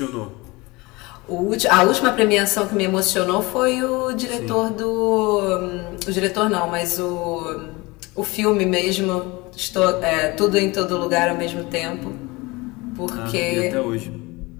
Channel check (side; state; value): right; quieter; 23.6 dB